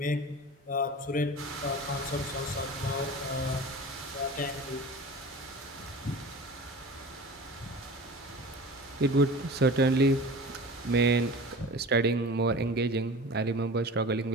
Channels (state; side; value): normal; both; correlation 0.37